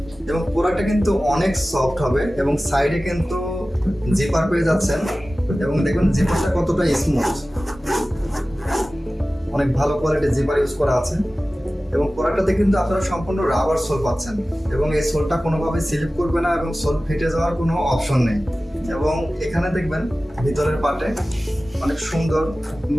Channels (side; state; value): both; normal; correlation 0.96